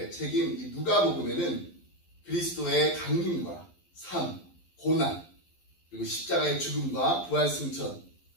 책임 이 누가복음에는 그리스도의 강림과 삶, 고난, 그리고 십자가의 죽음과 부활 승천,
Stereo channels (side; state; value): right; late; 11 ms